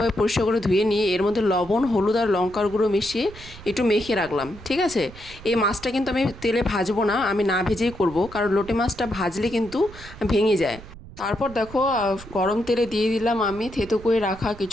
পরিষ্কার করে ধুয়ে নিয়ে এর মধ্যে লবণ, হলুদ আর লঙ্কার গুঁড়ো মিশিয়ে একটু মেখে রাখলাম। ঠিক আছে, এই মাছটা কিন্তু আমি তেলে ভাজবো না, আমি না ভেজেই করব, কারণ লোটে মাছটা ভাজলে কিন্তু ভেঙে যায়। তারপর দেখো, গরম তেলে দিয়ে দিলাম আমি থেতো করে রাখা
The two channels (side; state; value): right; noise; rumble, 17 dB below the sound